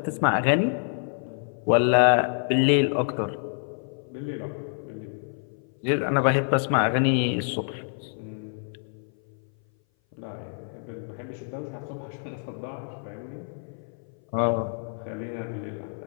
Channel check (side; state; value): right; silent; 58 dB below the other